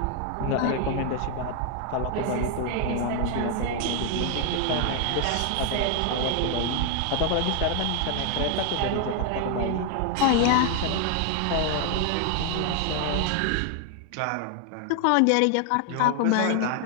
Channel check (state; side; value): different; both; correlation 0.00